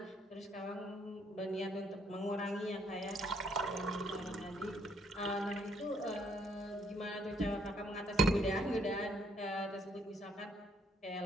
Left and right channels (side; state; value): both; normal; correlation 0.68